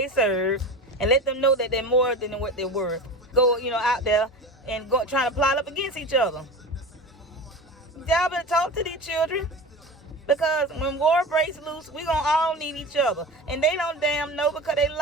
serve, and let them know that they're more than what they're worth. Go, you know, out there and go trying to plot up against each other. Y'all better talk to these children. Because when war breaks loose, we gonna all need each other. And they don't damn know because they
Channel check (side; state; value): both; normal; correlation 0.31